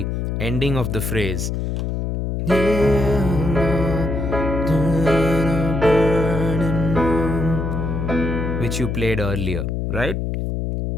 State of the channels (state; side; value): noise; left; hum, 2 dB below the sound